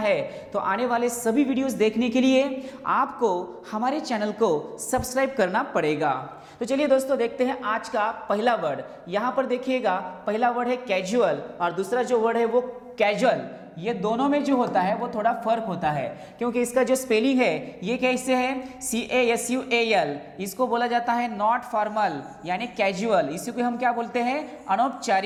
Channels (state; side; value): identical; both; correlation 1.00